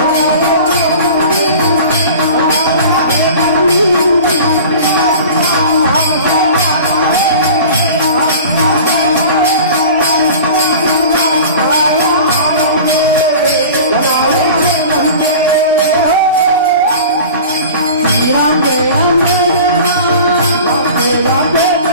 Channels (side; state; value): both; inverted; correlation -0.39